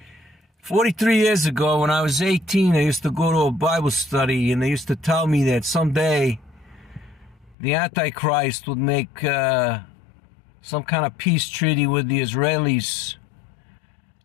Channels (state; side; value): drops out; right; at 7.6 s